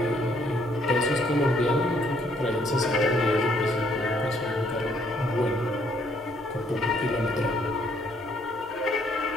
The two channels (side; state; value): right; noise; rumble, 26 dB below the sound